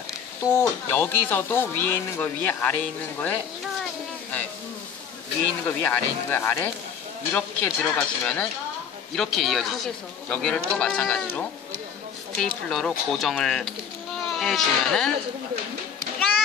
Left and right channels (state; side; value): quieter; right; 7.4 dB